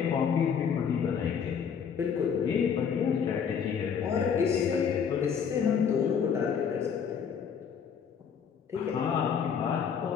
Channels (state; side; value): quieter; right; 7.1 dB